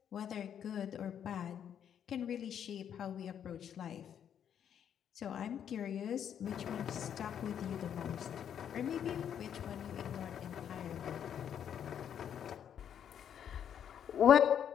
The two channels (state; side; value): quieter; right; 8.9 dB